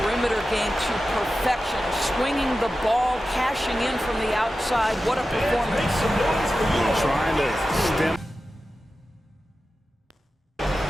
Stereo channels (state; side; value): normal; both; correlation 0.93